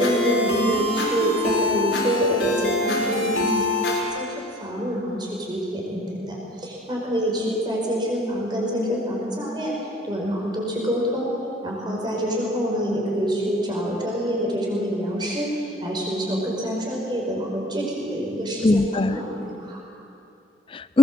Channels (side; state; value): both; normal; correlation 0.48